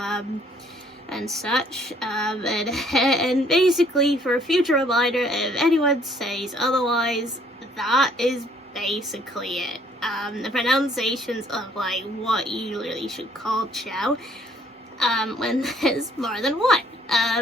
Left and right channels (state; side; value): normal; both; correlation 0.62